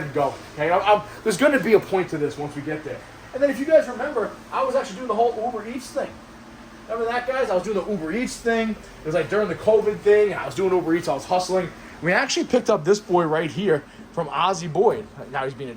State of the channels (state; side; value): identical; both; correlation 1.00